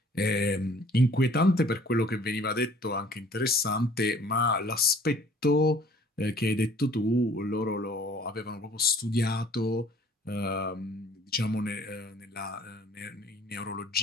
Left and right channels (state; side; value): normal; both; correlation 0.54